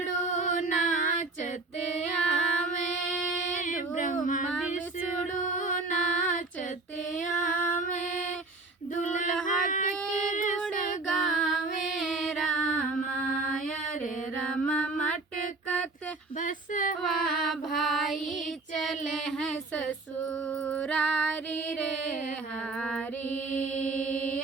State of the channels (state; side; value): quieter; left; 3.5 dB